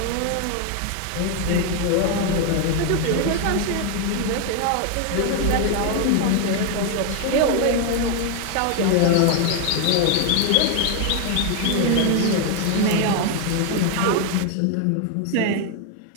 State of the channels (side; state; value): both; different; correlation 0.01